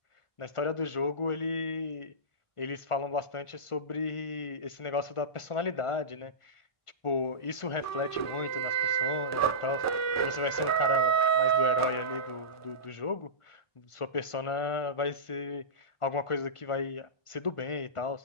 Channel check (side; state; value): right; late; 1.5 ms